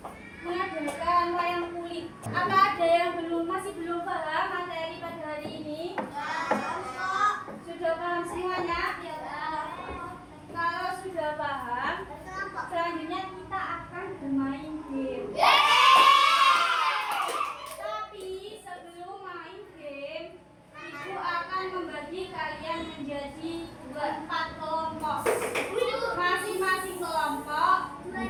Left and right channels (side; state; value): both; identical; correlation 1.00